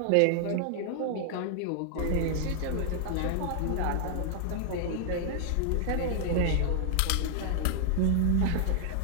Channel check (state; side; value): different; both; correlation 0.00